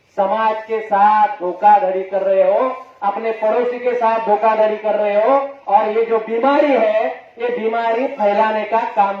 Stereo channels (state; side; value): identical; both; correlation 1.00